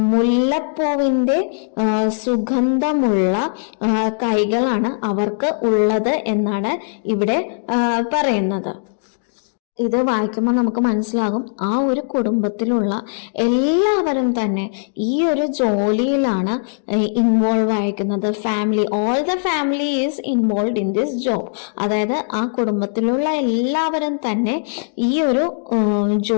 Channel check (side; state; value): right; silent; digital silence